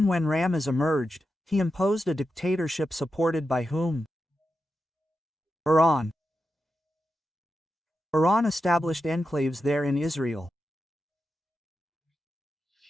when Ramez emerged, he imposed a dictatorship supported by whom? Iran. Iran established enclaves there in Israel.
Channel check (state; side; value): normal; both; correlation 0.89